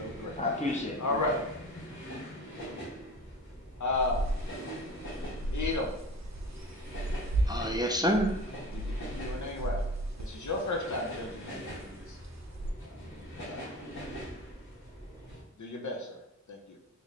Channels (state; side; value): normal; both; correlation 0.36